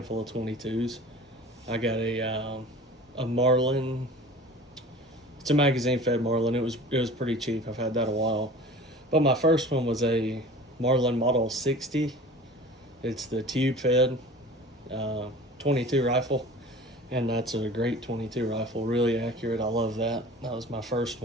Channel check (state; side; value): normal; both; correlation 0.41